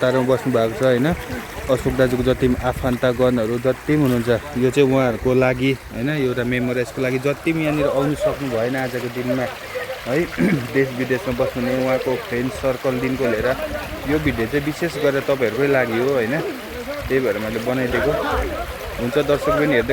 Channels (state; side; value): identical; both; correlation 1.00